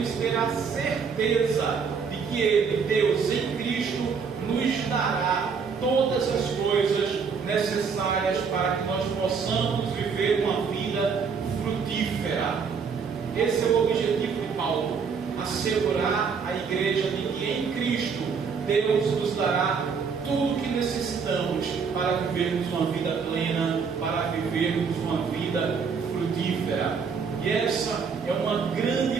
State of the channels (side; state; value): left; quieter; 5.8 dB